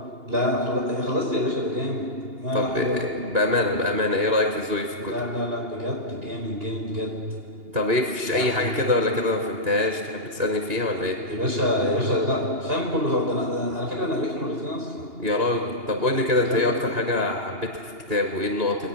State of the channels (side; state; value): left; late; 2.8 ms